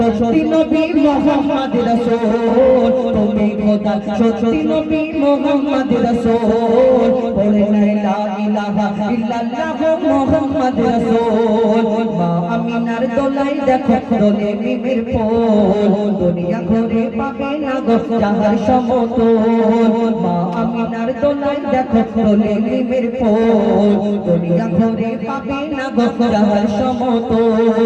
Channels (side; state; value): both; identical; correlation 1.00